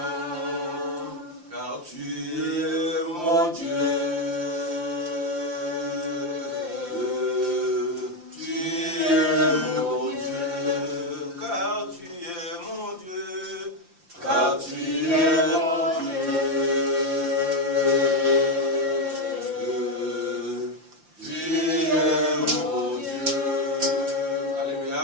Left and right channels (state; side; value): late; left; 5.8 ms